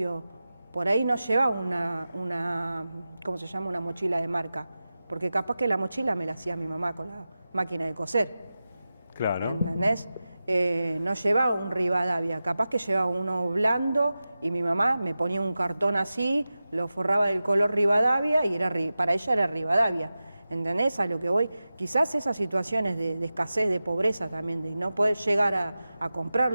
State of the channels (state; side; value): inverted; both; correlation -0.94